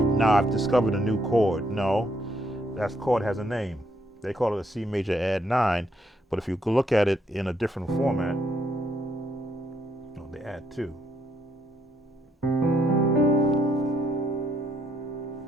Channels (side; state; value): both; normal; correlation 0.73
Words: I've discovered a new chord. No, that chord has a name. They call it a C major add 9, but if you look at it in a different format, they add 2. I